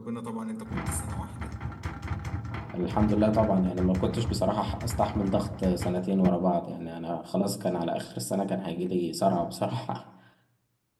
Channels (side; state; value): both; identical; correlation 1.00